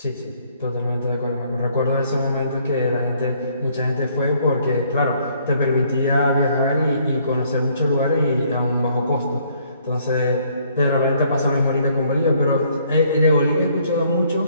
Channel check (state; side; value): inverted; both; correlation -0.64